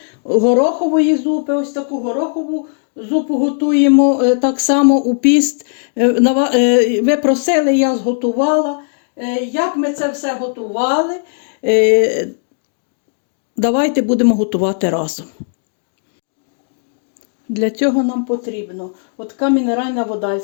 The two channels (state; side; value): silent; right; digital silence